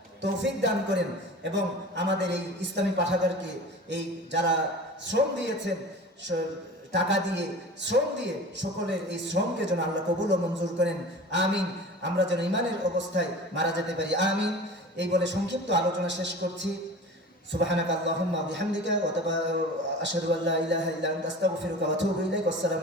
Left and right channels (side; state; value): both; normal; correlation 0.37